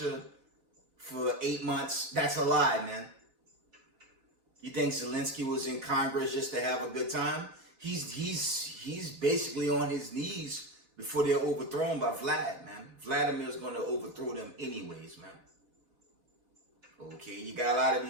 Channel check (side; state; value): left; late; 3.3 ms